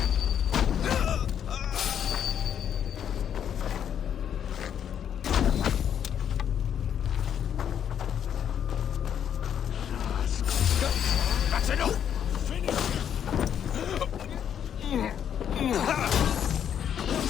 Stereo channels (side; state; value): right; quieter; 9.0 dB